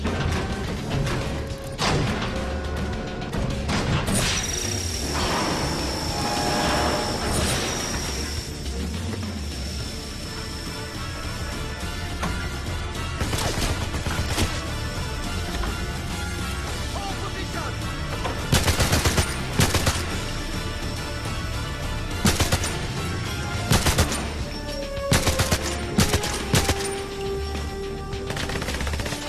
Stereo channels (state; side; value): identical; both; correlation 1.00